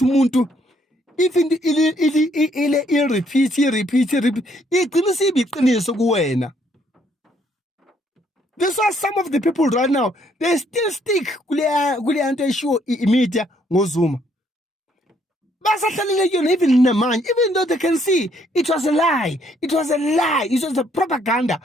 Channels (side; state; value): both; normal; correlation 0.68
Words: umuntu even repeat igcina sibiqiniso kuwena. That's why some of the people right now, they still stick kule anto eshiwo media ngoZuma. Even in the mind, even though they can see it was a lie, it was a propaganda,